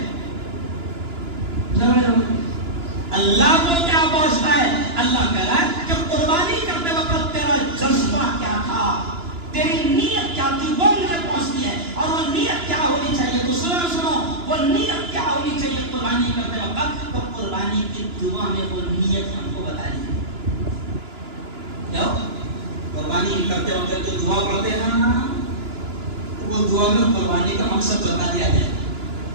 جھگڑے ہوتے۔ اللہ کو کیا پہنچتا ہے؟ اللہ کہہ رہا ہے کہ قربانی کرتے وقت تیرا جذبہ کیا تھا، تیری نیت کیا تھی، وہ مجھے پہنچتی ہے۔ اور وہ نیت کیا ہونی چاہیے؟ تو سنو وہ نیت کیا ہونی چاہیے قربانی کرتے وقت؟ تو قربانی کی دعا میں وہ نیت ہم کو بتا دی۔ کیا قربانی کرتے وقت جو دعا پڑھتے ہیں نا، وہ دعا میں قربانی کا مقصد بتا دیا گیا۔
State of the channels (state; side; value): late; left; 2.9 ms